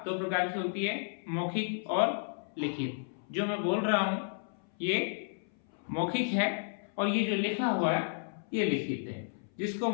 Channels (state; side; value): silent; right; 56 dB below the other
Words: 2 प्रकार की होती है, मौखिक और लिखित। जो मैं बोल रहा हूं ये मौखिक है और ये जो लिखा हुआ है ये लिखित है। जिसको